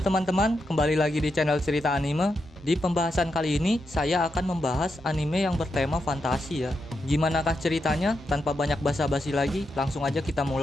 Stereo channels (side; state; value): both; normal; correlation 0.85